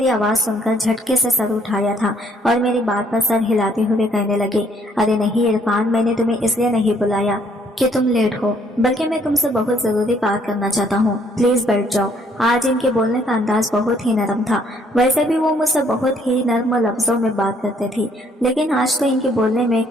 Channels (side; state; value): both; normal; correlation 0.66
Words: आवाज सुनकर झटके से सर उठाया था और मेरी बात पर सर हिलाते हुए कहने लगे, अरे नहीं इरफान, मैंने तुम्हें इसलिए नहीं बुलाया कि तुम लेट हो, बल्कि मैं तुमसे बहुत जरूरी बात करना चाहता हूँ। प्लीज बैठ जाओ। आज इनके बोलने का अंदाज बहुत ही नरम था। वैसे भी वो मुझसे बहुत ही नर्म लफ्जों में बात करते थे, लेकिन आज तो इनके बोलने में